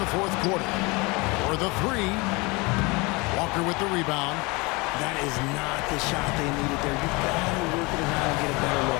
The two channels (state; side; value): quieter; right; 26.0 dB